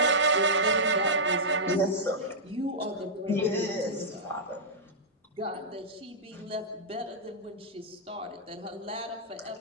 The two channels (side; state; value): both; normal; correlation -0.10